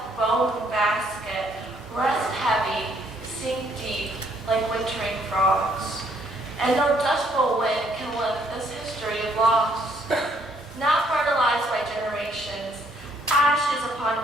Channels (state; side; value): normal; both; correlation 0.67